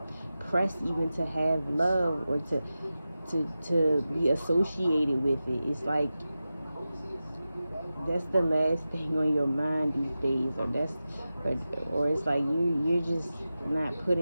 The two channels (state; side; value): inverted; both; correlation -0.93